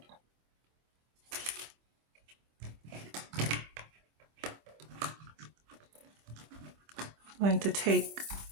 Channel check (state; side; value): late; left; 25 ms